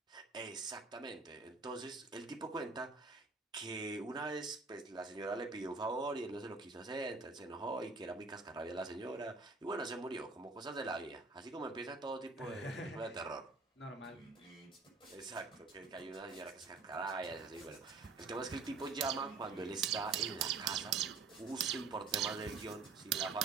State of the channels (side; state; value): left; quieter; 4.3 dB